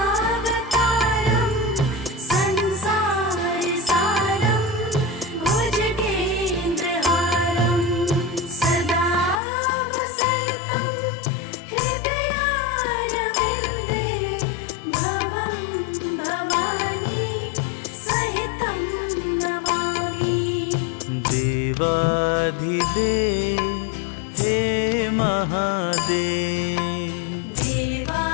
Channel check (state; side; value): drops out; right; at 9.4 s